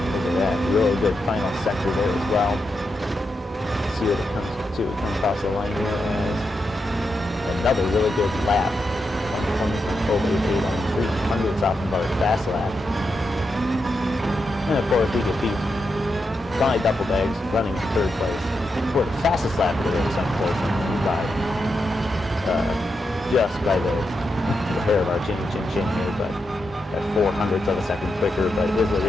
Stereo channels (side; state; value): both; normal; correlation 0.85